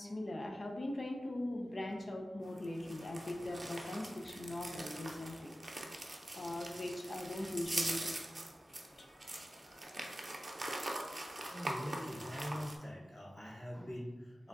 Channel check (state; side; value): normal; both; correlation 0.94